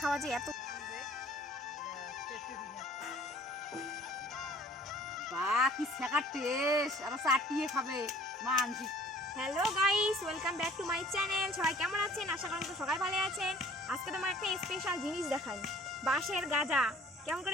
খাওয়া যে এত কি ছেঁকার টেস্ট, আর চাটিয়ে খাবে মানসিক। Hello guys, welcome back to my channel. সবাই কেমন আছেন? আশা করি তো সবাই ভালো আছেন। আজকে তোমার একটা স্পেশাল জিনিস দেখাই, বাঁশের গাজা। কেমন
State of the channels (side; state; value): both; normal; correlation 0.53